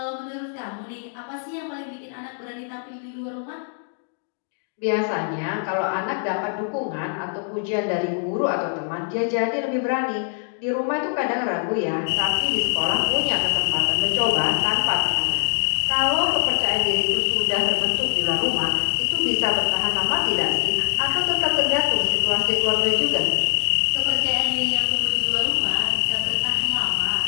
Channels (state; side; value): silent; right; 63 dB below the other